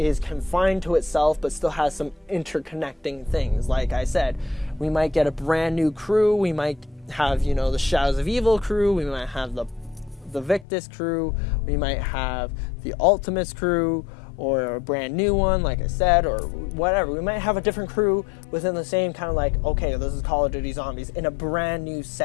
confined to itself but still has some interconnecting things. Like I said, we might get a brand new crew. We might have, the Shadows of Evil crew. We might have the Victus crew. We might have the Ultimates crew, or a brand new one, like I said, or whatever. We might have a different crew within the same kind of like, okay, this is Call of Duty Zombies in a brand new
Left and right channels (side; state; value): right; drops out; at 10.7 s